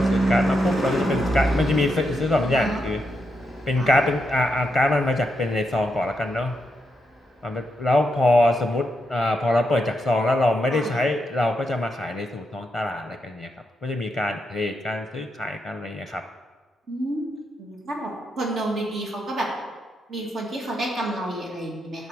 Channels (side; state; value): both; normal; correlation 0.83